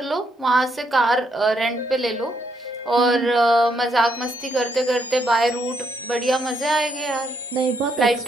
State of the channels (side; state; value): both; normal; correlation 0.75